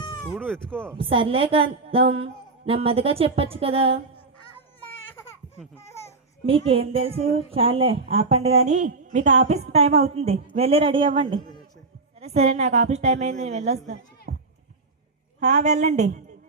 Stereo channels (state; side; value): quieter; left; 3.8 dB